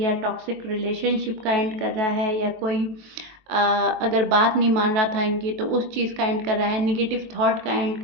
टॉक्सिक रिलेशनशिप का एंड कर रहा है, या कोई अगर बात नहीं मान रहा था इनकी तो उस चीज़ का एंड कर रहा है, निगेटिव थॉट का एंड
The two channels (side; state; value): left; late; 23 ms